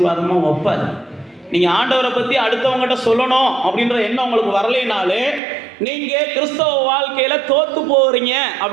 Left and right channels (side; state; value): left; drops out; at 5.4 s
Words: வைப்பார். நீங்கள் ஆண்டவரை பற்றி அடுத்தவங்ககிட்ட சொல்லணும் அப்படின்ற எண்ணம் உங்களுக்கு வரலைனாலே நீங்கள் கிறிஸ்தவ வாழ்க்கையில் தோற்று போகிறீங்க